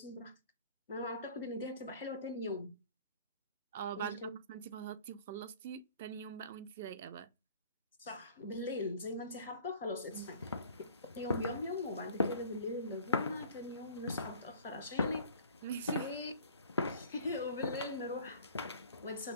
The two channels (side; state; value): both; inverted; correlation -0.48